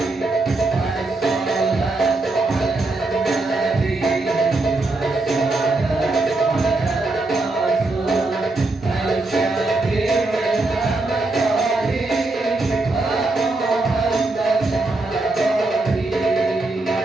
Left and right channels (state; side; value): quieter; left; 3.1 dB